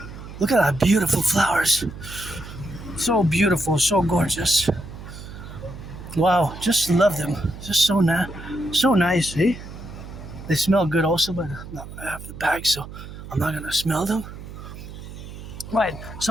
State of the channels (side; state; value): right; noise; hum, 13 dB below the sound